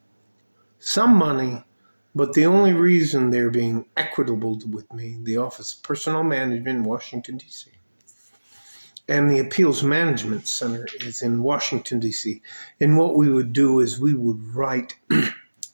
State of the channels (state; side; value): inverted; both; correlation -1.00